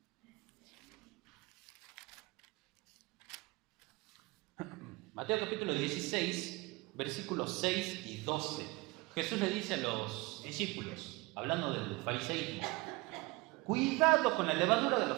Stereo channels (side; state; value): left; quieter; 24.3 dB